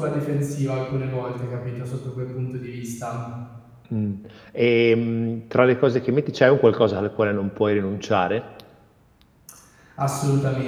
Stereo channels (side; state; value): both; identical; correlation 1.00